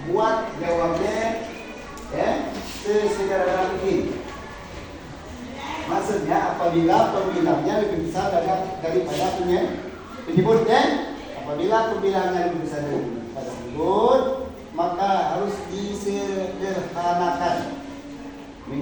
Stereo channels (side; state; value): both; identical; correlation 1.00